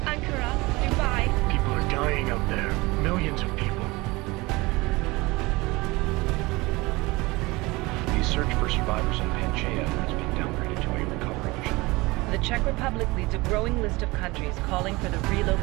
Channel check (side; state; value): left; quieter; 22.6 dB